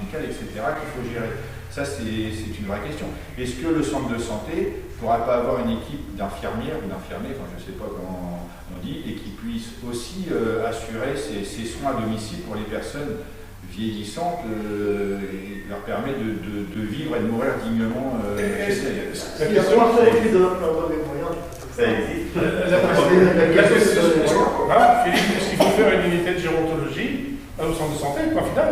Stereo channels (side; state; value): both; identical; correlation 1.00